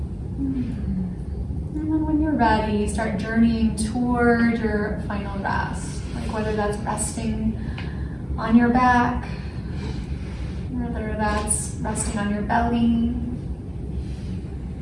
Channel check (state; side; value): identical; both; correlation 1.00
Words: And then when you're ready, start journeying toward your final rest. Whether that's resting on your back, whether that's resting on your belly.